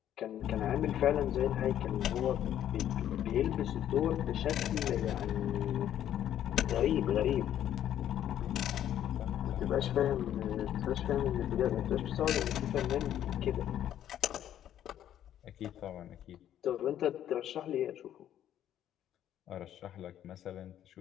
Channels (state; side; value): quieter; right; 11.1 dB